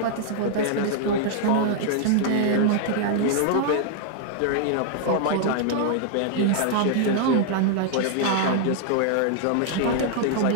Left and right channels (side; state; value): both; different; correlation 0.00